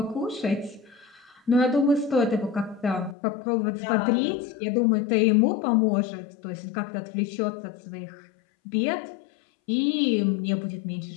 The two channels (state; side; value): drops out; right; at 3.2 s